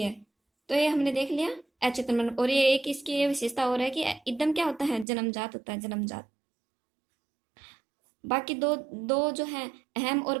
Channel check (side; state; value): left; drops out; at 5.1 s